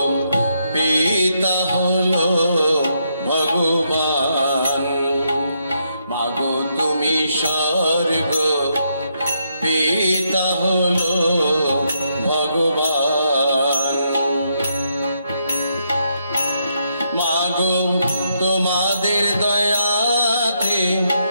পিতা হলো ভগবান। মাগো তুমি স্বর্গ পিতা হলো ভগবান। মাগো তোমাদের দয়াতে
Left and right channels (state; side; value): inverted; both; correlation -0.78